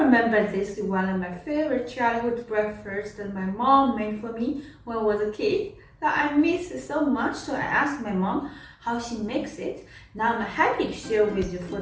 remember this is one of my favorite childhood breakfasts that my mom made for me when I was a kid. That I miss it so much, so I asked my mom how she makes it. Now I'm happy to share with you for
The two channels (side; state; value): both; identical; correlation 1.00